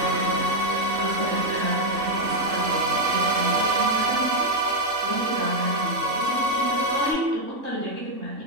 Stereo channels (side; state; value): left; late; 3.6 ms